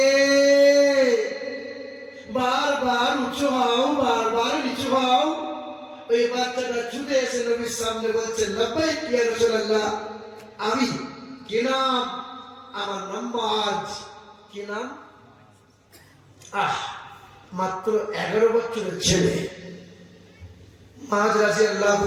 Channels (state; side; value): identical; both; correlation 1.00